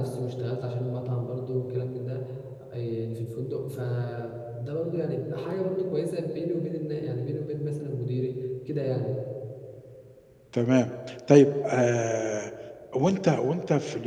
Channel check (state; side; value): identical; both; correlation 1.00